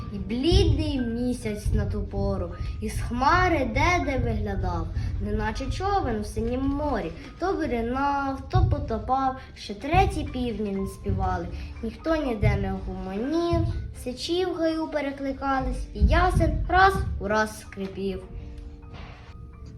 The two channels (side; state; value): both; identical; correlation 1.00